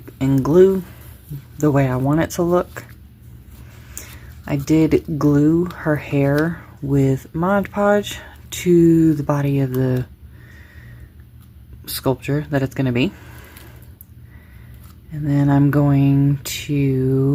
and glue the way I want it to look. I did glue her hair with Mod Podge to the body of the sculpture that it's going to be. And then I'm going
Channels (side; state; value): both; identical; correlation 1.00